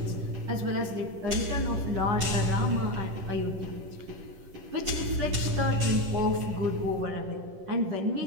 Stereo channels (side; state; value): left; late; 10 ms